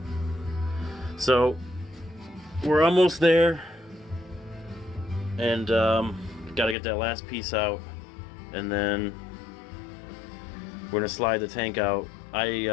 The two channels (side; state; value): right; drops out; at 6.8 s